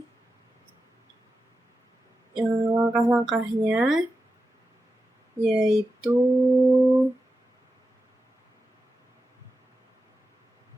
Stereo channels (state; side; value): normal; both; correlation 0.91